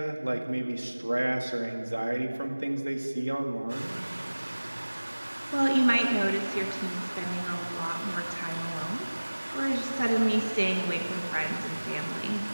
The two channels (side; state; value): both; inverted; correlation -1.00